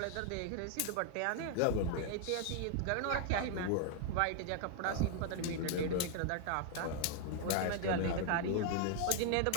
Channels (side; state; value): both; different; correlation 0.00